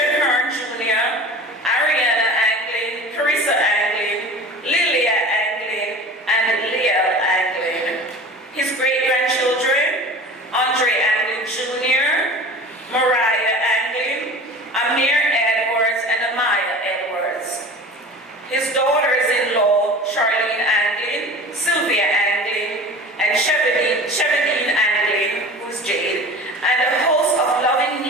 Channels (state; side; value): normal; both; correlation 0.38